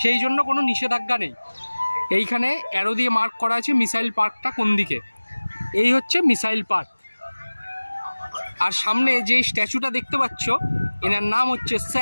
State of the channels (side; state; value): both; inverted; correlation -1.00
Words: সেই জন্য কোনো নিষেধাজ্ঞা নেই। এইখানে অ্যারো দিয়ে মার্ক করা আছে মিসাইল পার্কটা কোন দিকে। এই হচ্ছে মিসাইল পার্ক। আর সামনে যে স্ট্যাচুটা দেখতে পাচ্ছ, এনার নাম হচ্ছে